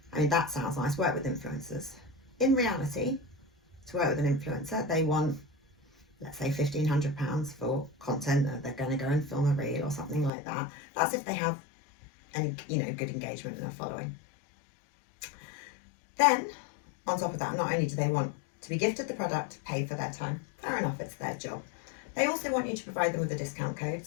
I mean, that sounds nice, work with influencers. In reality, to work with an influencer, they want, let's say, £1,500 for content that they're going to go and film a reel or something like that. That's if they have any, good engagement and a following. Then, on top of that, not only do they want to be gifted the product, paid for their time, fair enough, it's their job. They also want you to provide them with a discount code.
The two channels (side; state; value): right; drops out; at 10.3 s